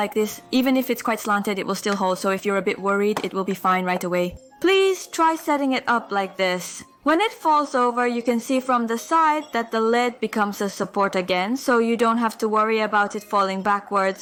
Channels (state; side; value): identical; both; correlation 1.00